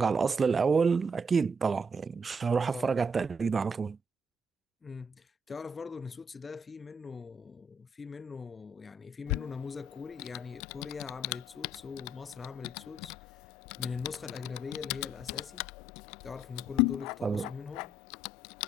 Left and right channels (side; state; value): both; normal; correlation 0.73